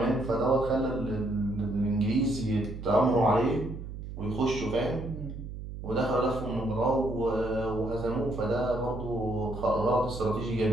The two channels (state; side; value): noise; right; hum, 9 dB below the sound